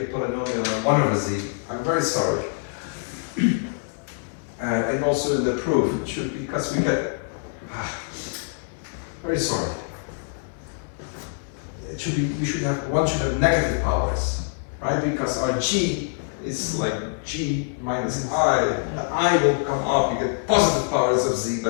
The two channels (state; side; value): silent; right; 61 dB below the other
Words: polynomial of 1 over z. I'm very sorry. And also in the proof, it should be, because we get. Very sorry. It should be, one should have negative powers. Right, because our g is like g minus I. The I will come up, you get positive powers of z,